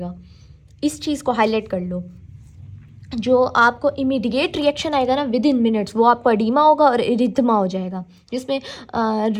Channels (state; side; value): identical; both; correlation 1.00